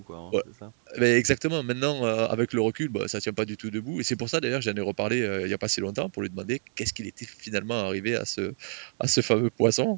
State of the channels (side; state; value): left; silent; digital silence